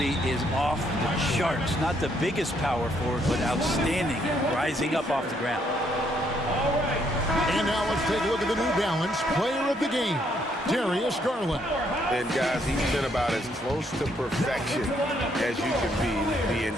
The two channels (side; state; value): both; normal; correlation 0.71